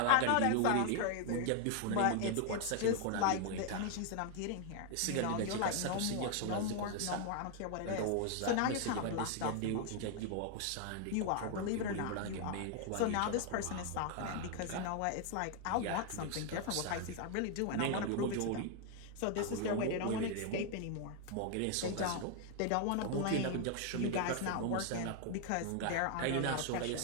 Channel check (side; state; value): both; different; correlation 0.00